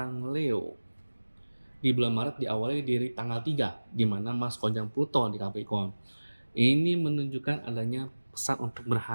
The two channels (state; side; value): inverted; both; correlation -1.00